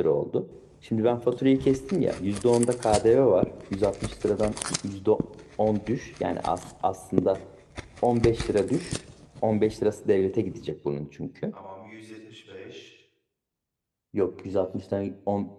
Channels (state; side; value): identical; both; correlation 1.00